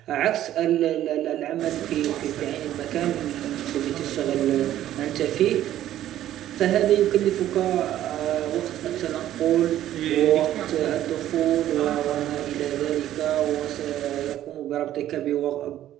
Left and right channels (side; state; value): left; quieter; 12.6 dB